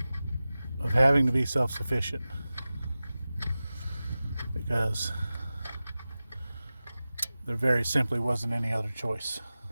of having to be self-sufficient, because there very simply wasn't any other choice.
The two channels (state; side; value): inverted; both; correlation -0.96